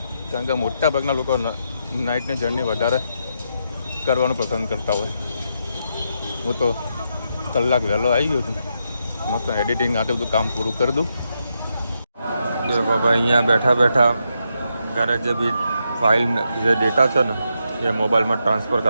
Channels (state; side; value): inverted; both; correlation -0.82